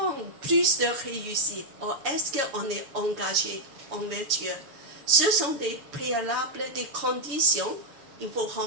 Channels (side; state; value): left; late; 7.2 ms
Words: plus de réussite? Ou est-ce qu'on est engagé envers Dieu? Ce sont des préalables, des conditions qu'il faut